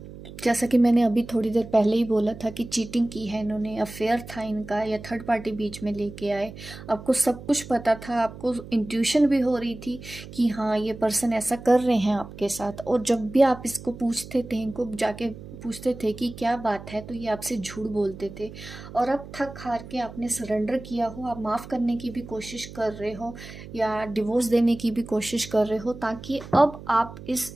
जैसा कि मैंने अभी थोड़ी देर पहले ही बोला था कि चीटिंग की है इन्होंने, अफेयर था इनका, या थर्ड पार्टी बीच में लेके आए। आपको सब कुछ पता था, आपको इंट्यूशन भी हो रही थी कि हाँ ये पर्सन ऐसा कर रहे हैं आपके साथ। और जब भी आप इसको पूछते थे, इनको जाके पूछते थे कि क्या बात है, तो ये आपसे झूठ बोलते थे। और अब थक हार के आपने सरेंडर किया हो, आप माफ़ करने की भी कोशिश कर रहे हो, या डिवोर्स देने की भी कोशिश कर रहे हो, ताकि अब आप इस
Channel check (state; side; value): noise; right; hum, 14 dB below the sound